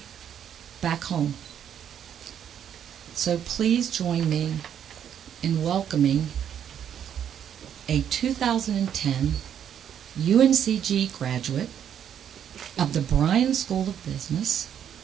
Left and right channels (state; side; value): quieter; left; 9.2 dB